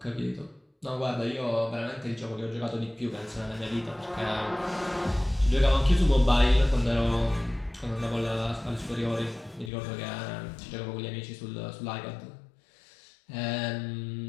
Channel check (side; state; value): right; drops out; at 9.7 s